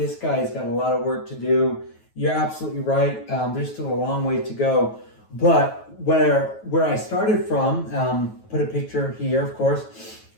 guy's got a lot of work to do. You're absolutely right. There's still a long way to go. But where I started from, put a picture here, of course,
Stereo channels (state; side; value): late; right; 9.2 ms